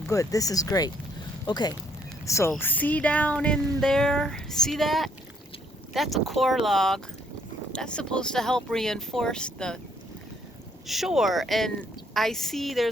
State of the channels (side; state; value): both; normal; correlation 0.67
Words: this is great. Okay, so see down in there, see that? That's a core log. That's supposed to help reinforce the shore. And I see